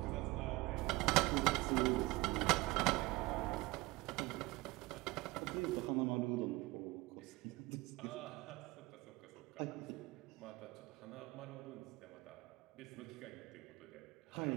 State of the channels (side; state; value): left; quieter; 21.6 dB